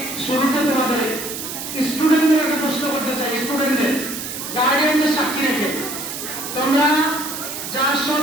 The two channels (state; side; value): noise; right; hiss, 7 dB below the sound